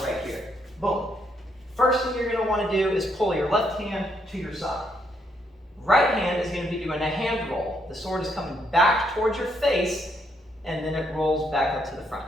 right here, boom. First thing you're going to want to do is pull your left hand to your side. Right hand is going to be doing a hand roll. The sword is coming back towards your face, and then it rolls back up to the front.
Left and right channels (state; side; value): normal; both; correlation 0.74